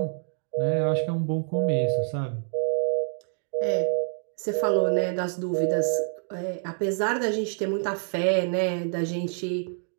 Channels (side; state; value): left; silent; digital silence